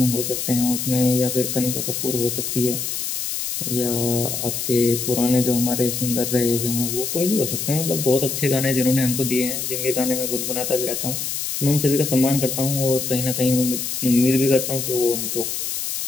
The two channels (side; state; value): left; noise; hiss, 3 dB below the sound